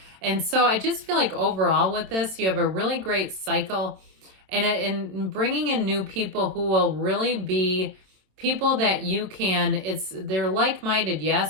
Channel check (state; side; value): late; left; 27 ms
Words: And so I just feel like overall with this, you have a really great cycle, and bringing in new people who will really be people that you can, they're like-minded,